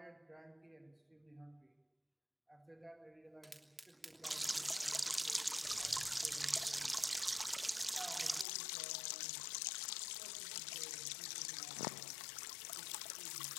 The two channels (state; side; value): drops out; right; at 8.5 s